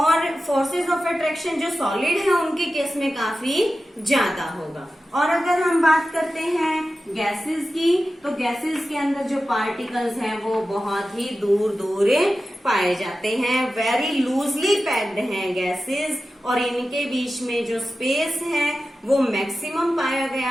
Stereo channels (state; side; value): normal; both; correlation 0.93